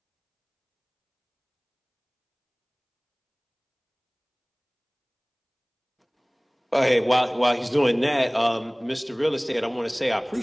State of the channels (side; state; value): both; identical; correlation 1.00